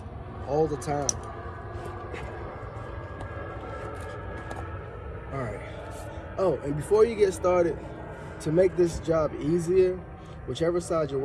all the time. All right. Oh, and before you get started, to make this job easier, whichever side you're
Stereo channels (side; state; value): both; identical; correlation 1.00